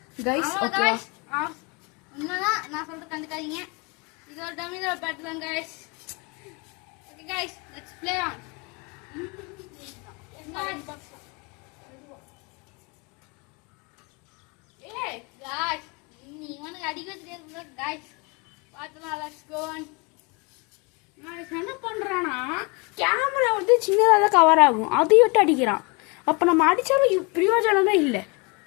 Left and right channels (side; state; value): right; quieter; 29.6 dB